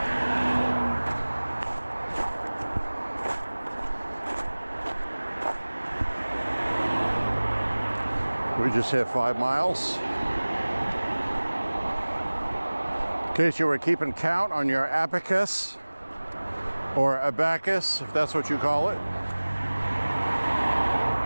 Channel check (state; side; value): inverted; both; correlation -1.00